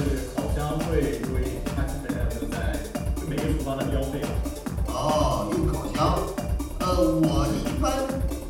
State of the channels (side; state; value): both; identical; correlation 1.00